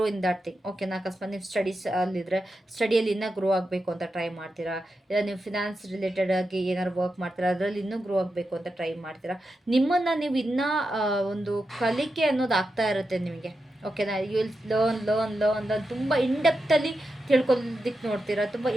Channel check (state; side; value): normal; both; correlation 0.88